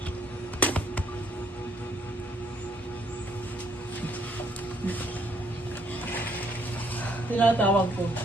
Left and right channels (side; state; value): both; normal; correlation 0.67